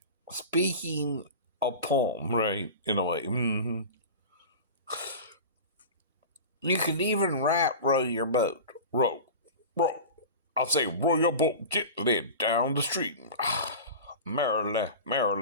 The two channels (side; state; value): both; inverted; correlation -0.32